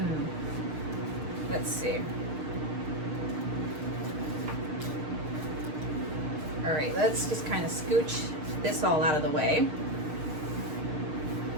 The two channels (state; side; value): late; left; 6.6 ms